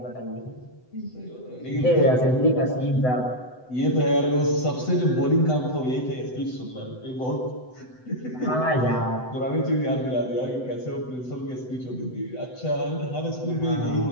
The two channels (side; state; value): right; late; 7.9 ms